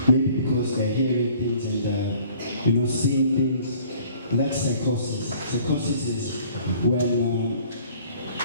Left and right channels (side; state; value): both; inverted; correlation -0.54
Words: maybe because they're hearing things and seeing things. And that's psychosis. Psychosis is when